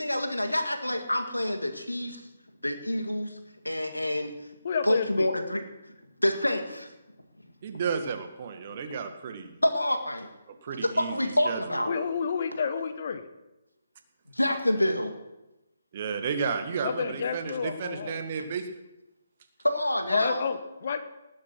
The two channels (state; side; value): inverted; both; correlation -0.87